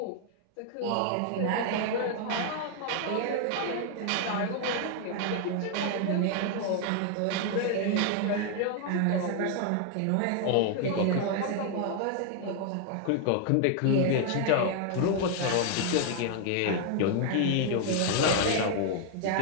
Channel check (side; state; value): both; different; correlation 0.00